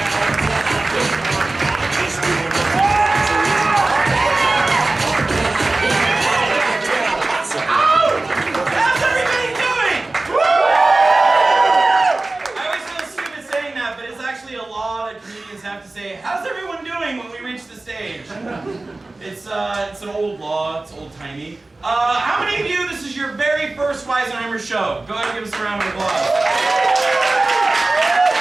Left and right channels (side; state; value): left; quieter; 3.1 dB